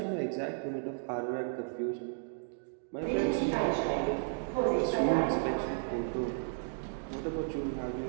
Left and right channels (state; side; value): silent; left; digital silence